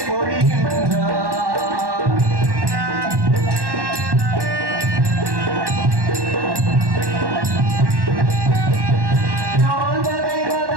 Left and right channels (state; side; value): late; left; 1.1 ms